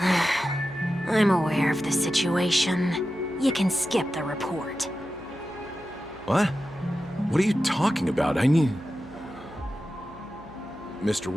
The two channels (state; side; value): noise; right; hum, 22 dB below the sound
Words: I'm aware of the situation. You can skip the report. What? What are you talking about? I need... Mr.